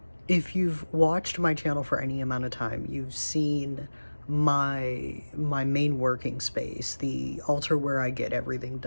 if you've watched my channel for any amount of time, you've seen my main working space, the altar where I get everything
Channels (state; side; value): inverted; both; correlation -1.00